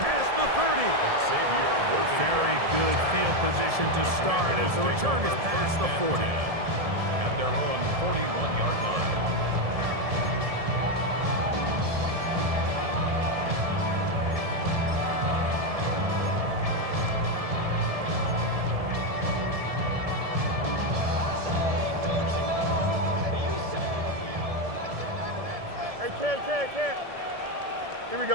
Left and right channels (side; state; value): left; late; 1.7 ms